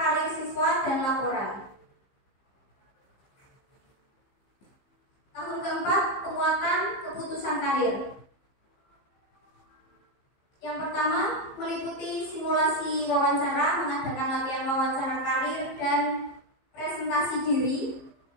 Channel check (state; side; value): late; right; 15 ms